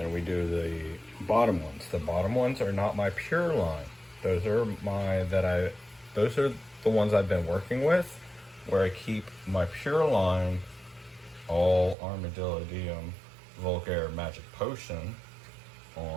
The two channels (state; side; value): drops out; left; at 12.0 s